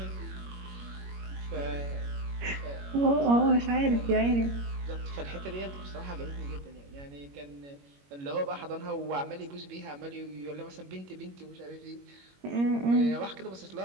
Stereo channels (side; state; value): left; late; 21 ms